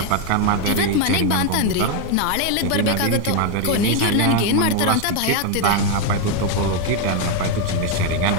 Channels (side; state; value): both; different; correlation 0.01